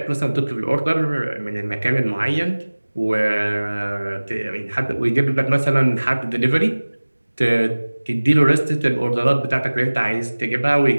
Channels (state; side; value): inverted; both; correlation -1.00